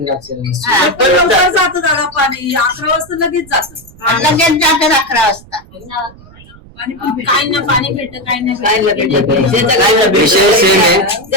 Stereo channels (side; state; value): right; noise; rumble, 23 dB below the sound